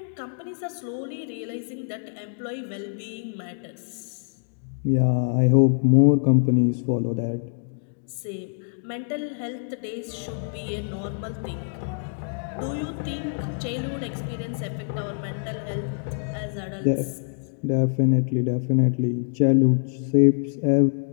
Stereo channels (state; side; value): silent; right; digital silence